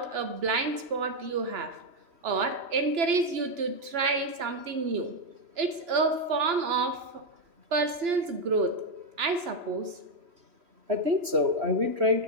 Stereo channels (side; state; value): left; late; 2.9 ms